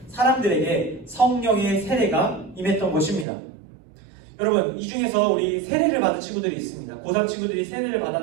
사람들에게 성령의 세례가 임했던 것입니다. 여러분, 이 중에서 우리 세례를 받은 친구들이 있습니다. 고3 친구들이 세례를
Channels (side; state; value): left; drops out; at 3.2 s